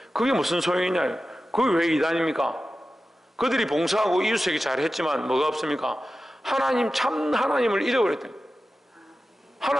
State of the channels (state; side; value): normal; both; correlation 0.94